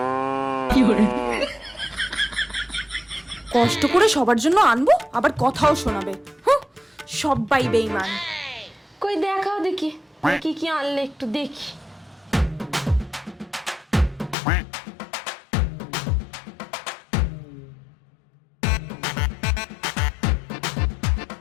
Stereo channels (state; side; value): drops out; right; at 14.4 s